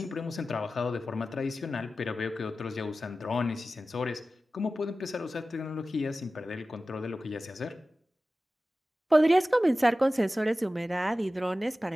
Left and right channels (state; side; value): normal; both; correlation 0.95